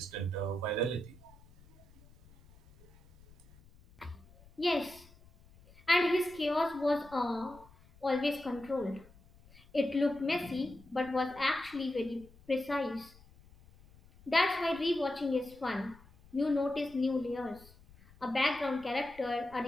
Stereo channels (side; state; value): left; noise; rumble, 25 dB below the sound